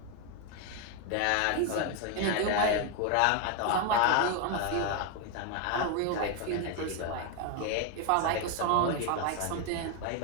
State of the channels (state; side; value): different; both; correlation 0.01